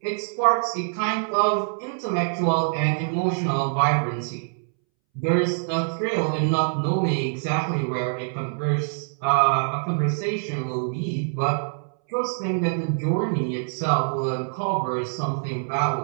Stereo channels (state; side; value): silent; left; 62 dB below the other